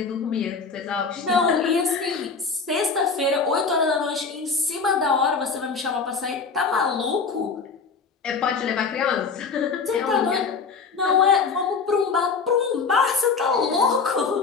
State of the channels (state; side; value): quieter; right; 5.0 dB